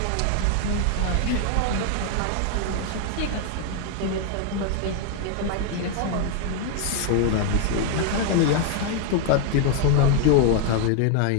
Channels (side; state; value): both; different; correlation 0.00